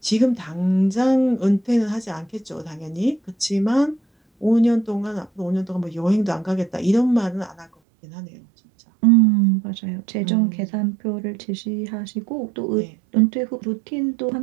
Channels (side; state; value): left; drops out; at 7.7 s